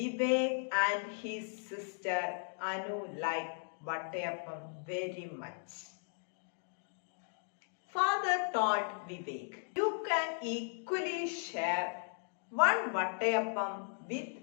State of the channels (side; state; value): right; silent; digital silence